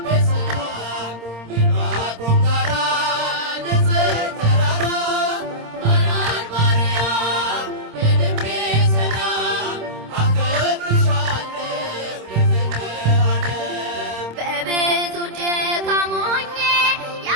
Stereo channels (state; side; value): late; left; 26 ms